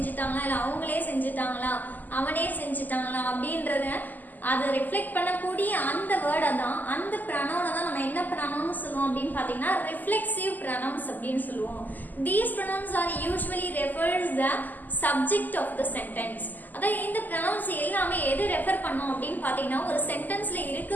இல்ல அவங்களே செஞ்சுட்டாங்களா அவனே செஞ்சுட்டாங்களா அப்படின்றத அதை ரிஃப்ளெக்ட் பண்ணக்கூடிய அந்த வேர்டை தான் அந்த ப்ரனவுனை தான் நம்ம என்ன ப்ரனவுன் சொல்லுவோம் அப்படின்னு பார்த்தீங்கன்னா ரிஃப்ளெக்சிவ் ப்ரனவுன்ஸ் அப்படின்னு சொல்லுவோம். These pronouns are usually refers the subject of the sentence. அதாவது இந்த ப்ரனவுன்ஸ் எல்லாமே எது ரெஃபர் பண்ணோம் அப்படின்னு பார்த்தீங்கன்னா ஒரு சென்டென்ஸ்ல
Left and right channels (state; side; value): late; right; 0.084 ms